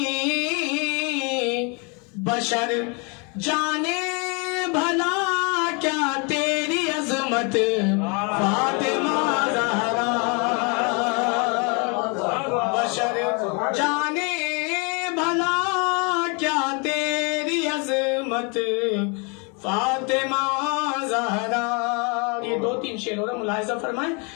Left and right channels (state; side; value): quieter; right; 33.0 dB